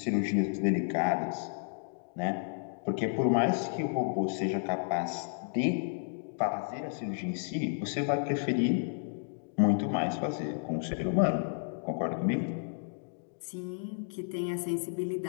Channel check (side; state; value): right; silent; digital silence